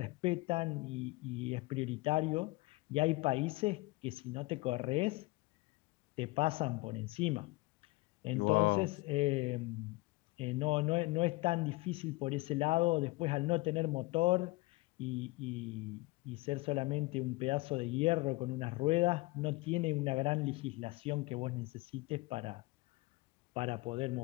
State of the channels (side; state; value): right; quieter; 22.4 dB